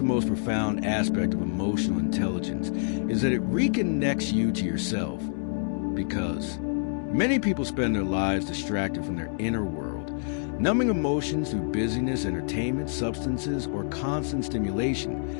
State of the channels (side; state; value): right; silent; digital silence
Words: most profound aspect of emotional intelligence is that it reconnects you to yourself, because many people spend their lives distracted from their inner world, numbing emotions through busyness, entertainment, substances, or constant